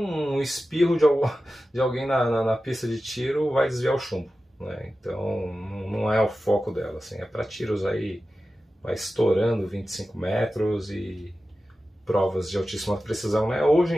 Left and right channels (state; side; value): normal; both; correlation 0.94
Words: espirro de alguém na pista de tiro, vai desviar o chumbo, né? Então não é o foco dela, assim, é para tiros aí, vai estourando 25 metros e provas de altíssima precisão, né? Hoje